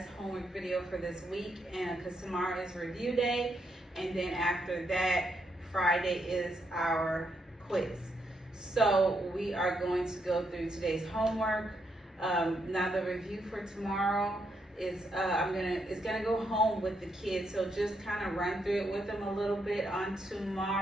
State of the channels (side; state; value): both; normal; correlation 0.78